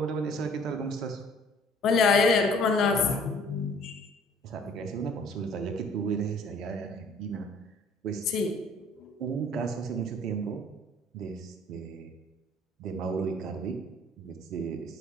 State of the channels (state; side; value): normal; both; correlation 0.56